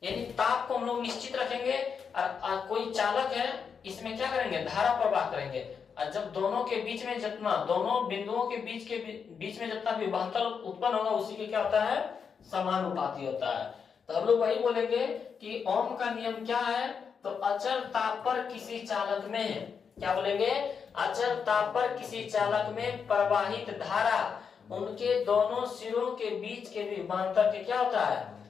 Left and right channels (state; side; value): quieter; right; 6.3 dB